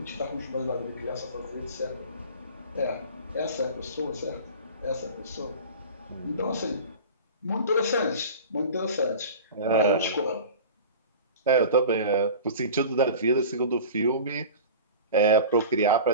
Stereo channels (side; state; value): both; inverted; correlation -0.36